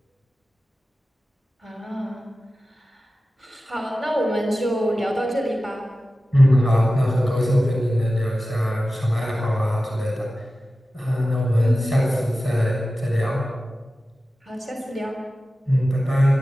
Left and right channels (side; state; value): both; normal; correlation 0.95